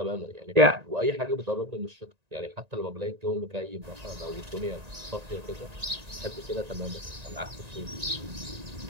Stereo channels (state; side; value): late; left; 1.9 ms